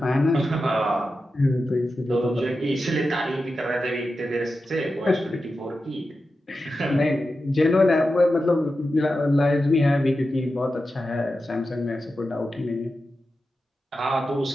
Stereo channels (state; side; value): normal; both; correlation 0.91